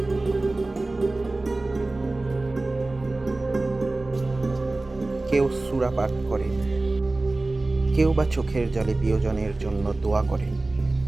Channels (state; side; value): quieter; left; 3.0 dB